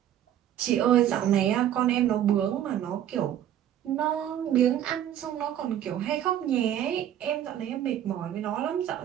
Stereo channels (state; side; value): quieter; left; 11.0 dB